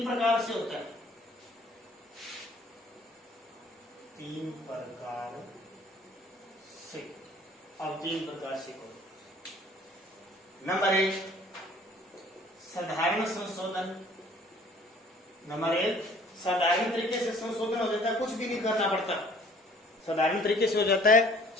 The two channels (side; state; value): both; normal; correlation 0.55